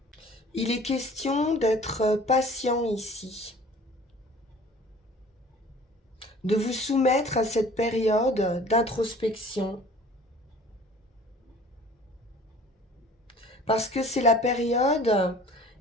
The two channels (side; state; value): both; normal; correlation 0.47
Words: Il est question d'être patient ici, de vous soumettre à cette période d'introspection, parce que c'est la période